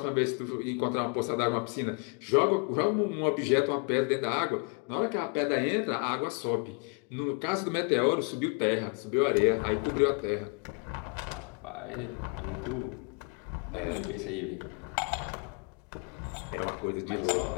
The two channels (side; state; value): right; quieter; 36.3 dB